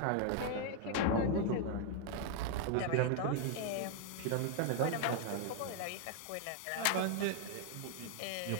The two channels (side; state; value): both; different; correlation 0.00